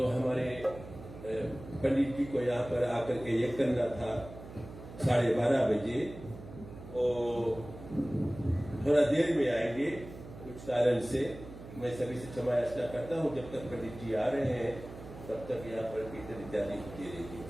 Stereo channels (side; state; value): right; noise; hum, 14 dB below the sound